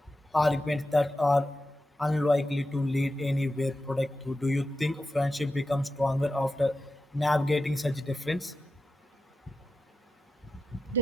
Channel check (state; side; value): normal; both; correlation 0.91